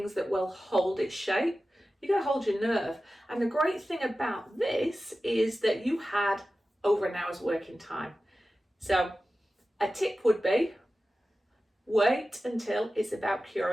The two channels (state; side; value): normal; both; correlation 0.94